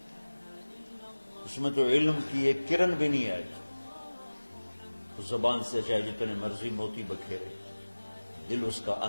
اس میں تو علم کی ایک کرن بھی نہیں آئے. زبان سے چاہے جتنے مرضی موتی بکھیرے، دل اس کا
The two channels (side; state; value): both; inverted; correlation -1.00